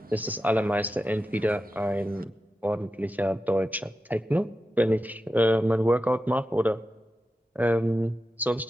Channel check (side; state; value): both; normal; correlation 0.91